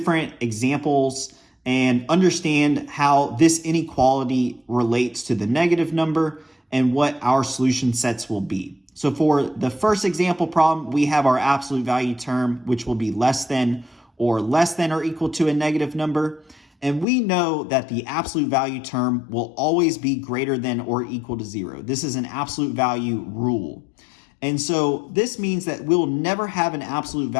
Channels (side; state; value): right; drops out; at 17.1 s